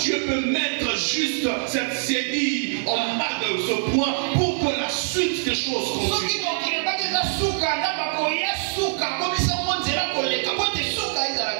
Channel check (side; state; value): left; silent; digital silence